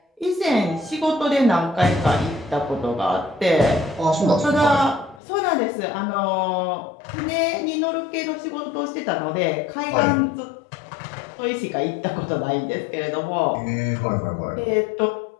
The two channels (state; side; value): drops out; right; at 5.2 s